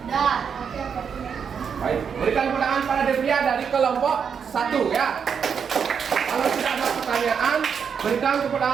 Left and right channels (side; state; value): left; quieter; 6.9 dB